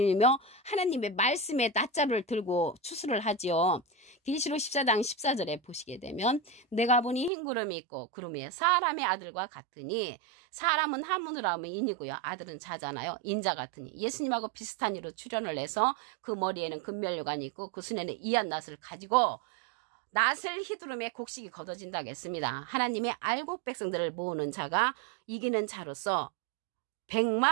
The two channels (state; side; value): drops out; left; at 7.3 s